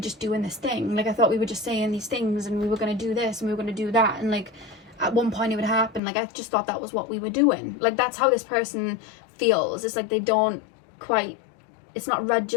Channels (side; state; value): right; drops out; at 6.0 s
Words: doing this thing. Like, I thought we were just saying these things and we were going to do this and we were going to do that. And like at one point it would happen. Like, I just thought that was what we were doing. Like, that's how this person feels. It's like they don't quite... It's not